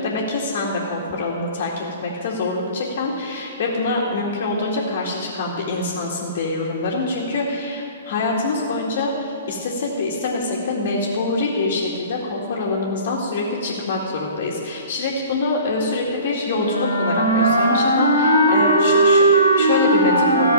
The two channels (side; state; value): both; inverted; correlation -0.44